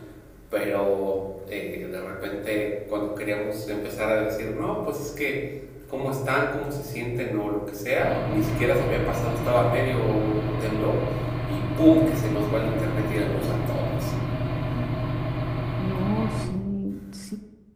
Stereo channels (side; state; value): both; identical; correlation 1.00